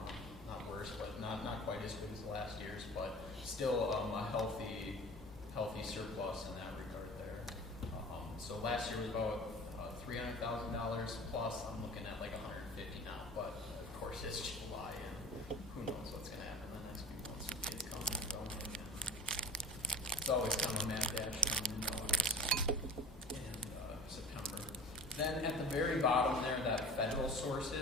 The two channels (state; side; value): normal; both; correlation 0.40